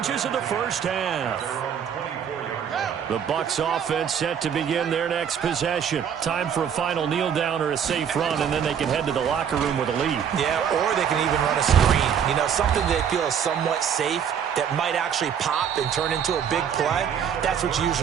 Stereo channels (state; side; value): quieter; left; 8.1 dB